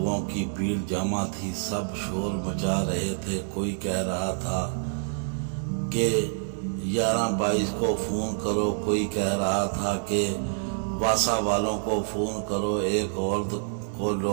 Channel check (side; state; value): left; silent; digital silence